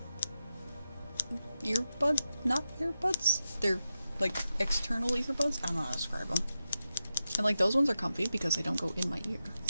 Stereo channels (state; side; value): inverted; both; correlation -0.90